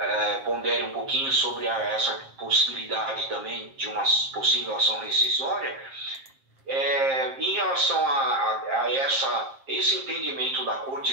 pondere um pouquinho sobre essa possibilidade também de uma possível ação rescisória, em relação a esse entendimento da Corte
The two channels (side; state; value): left; late; 7.5 ms